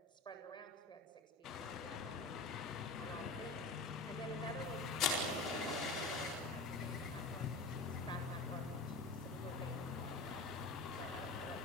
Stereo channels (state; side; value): quieter; right; 3.3 dB